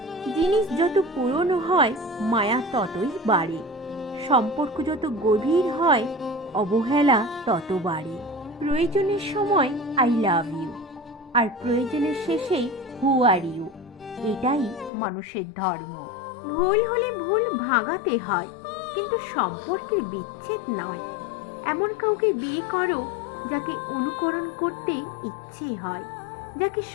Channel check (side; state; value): right; drops out; at 14.9 s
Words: জিনিস যত পুরনো হয় মায়া ততই বাড়ে। সম্পর্ক যত গভীর হয় অবহেলা তত বাড়ে। প্রয়োজনের সময় আই লাভ ইউ, আর প্রয়োজনের শেষেই হু আর ইউ। এটাই মানুষের ধর্ম। ভুল হলে ভুল ভাঙাতে হয়, কিন্তু সম্পর্কের বিচ্ছেদ নয়। এমন কাউকে বিয়ে করো যাকে অনুকরণ করতে ইচ্ছে হয়, যাকে